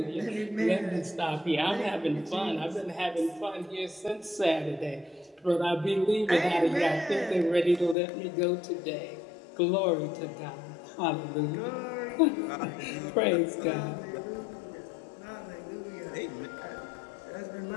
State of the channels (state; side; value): drops out; right; at 8.0 s